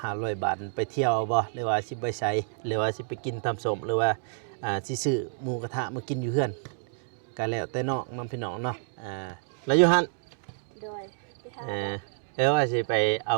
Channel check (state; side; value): silent; left; digital silence